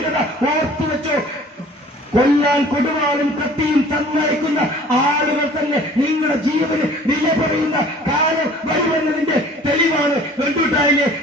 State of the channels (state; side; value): normal; both; correlation 0.49